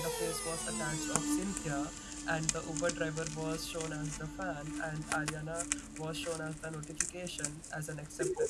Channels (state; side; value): identical; both; correlation 1.00